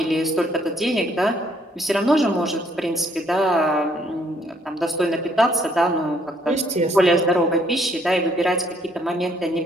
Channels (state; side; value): normal; both; correlation 0.67